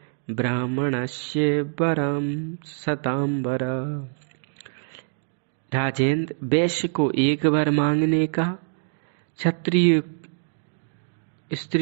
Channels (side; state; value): left; silent; 62 dB below the other